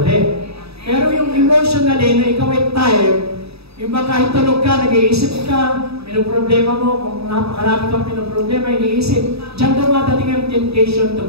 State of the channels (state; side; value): late; left; 0.78 ms